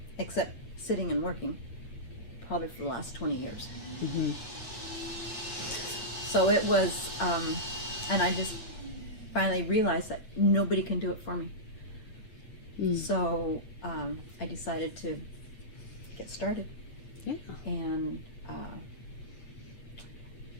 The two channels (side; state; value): right; late; 8.8 ms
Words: except sitting and working probably for the last 20 years. Mm-hmm. So it was, and I just finally realized that nobody can do it for me. So I decided to get started. Yeah. And